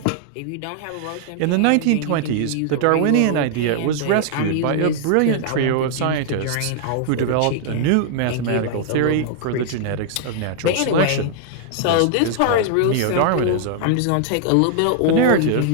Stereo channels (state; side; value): different; both; correlation -0.01